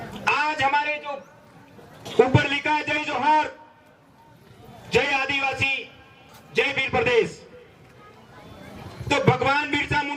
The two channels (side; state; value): both; identical; correlation 1.00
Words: आज हमारे जो ऊपर लिखा है, जय जोहार, जय आदिवासी, जय वीर प्रदेश, तो भगवान बिरसा